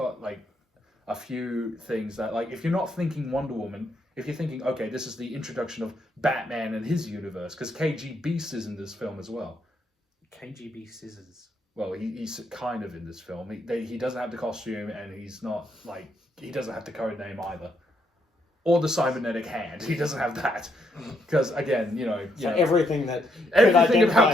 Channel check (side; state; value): both; normal; correlation 0.75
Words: like, a few things that, like, if you're not thinking Wonder Woman, if you're thinking, okay, this is the introduction of Batman and his universe, because KG Beast is in this film as well. KGB Scissors. Well, he's kind of in this film. He doesn't have the costume, and he's not, like, he doesn't have the code name either. or the cybernetic hand. He doesn't have that because again, So everything that everything could about